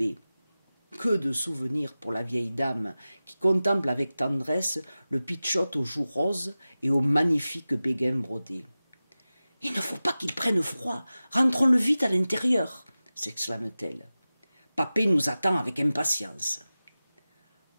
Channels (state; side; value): inverted; both; correlation -0.96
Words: Que de souvenirs pour la vieille dame qui contemple avec tendresse le pitchout aux joues roses et aux magnifiques béguins brodés. « Il ne faut pas qu'il prenne froid, rentrons-le vite à l'intérieur !» s'exclame-t-elle. « Papé nous attend avec impatience. »